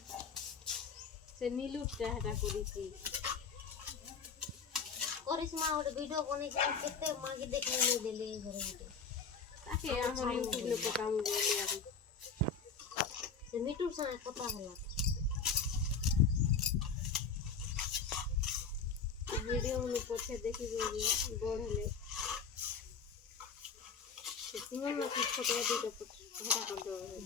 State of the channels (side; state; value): right; quieter; 5.6 dB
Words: ସେ नीलुटा ହେଟା କରିଛି କରିସ୍ମା ଗୋଟେ ଭିଡିଓ ବନେଇଛି କେତେ ମାଗି ଦେଖି ନେଇ ଦେଲେ ଘରେ ଗୋଟେ ତାକେ ଆମର ୟୁଟ୍ୟୁବ ରେ ପକାମୁ ବୋଲି ଆରୁ ସେ ମିଟୁ ସାଙ୍ଗେ କଥା ହେଲା वीडियो में पछे देखि बढ़ले तुमन ना कुछ फोटो दे तो हटा कर दो